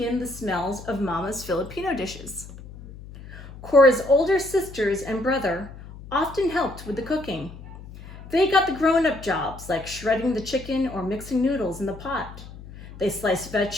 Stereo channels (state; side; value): noise; left; hum, 15 dB below the sound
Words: the smells of Mama's Filipino dishes. Cora's older sisters and brother often helped with the cooking. They got the grown-up jobs like shredding the chicken or mixing noodles in the pot. They sliced